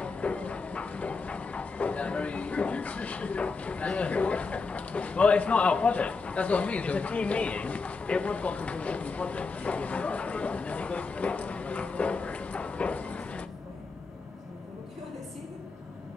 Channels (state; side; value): quieter; right; 4.3 dB